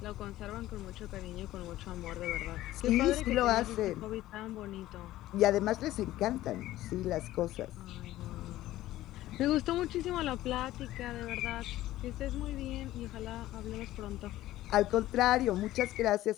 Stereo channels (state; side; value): quieter; right; 15.2 dB